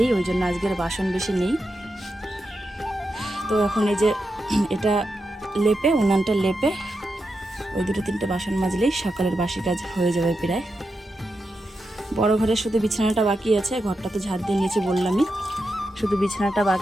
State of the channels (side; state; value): both; normal; correlation 0.87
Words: ওই জন্য আজকের বাসন বেশি নেই। তো এখন এই যে এটা লেপে উনানটা লেপে ওই 2-3টে বাসন মাজলেই সকালের বাসি কাজ হয়ে যাবে প্রায়। বড় ঘরের শুধু বিছানাটা বাকি আছে, ঘরটা তো ঝাড় দিয়ে নিয়েছি বললামই, শুধু বিছানাটা